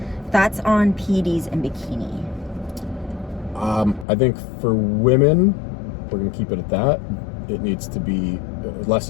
Thoughts on PDs and bikini? I think for women, we're going to keep it at that. It needs to be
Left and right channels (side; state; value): right; drops out; at 4.0 s